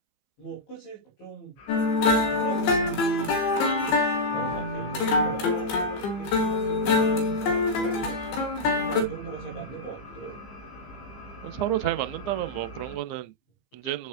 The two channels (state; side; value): late; right; 15 ms